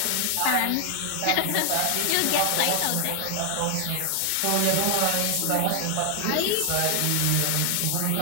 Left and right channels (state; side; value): different; both; correlation 0.00